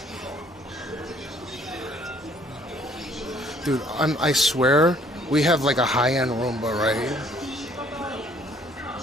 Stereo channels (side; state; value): both; normal; correlation 0.60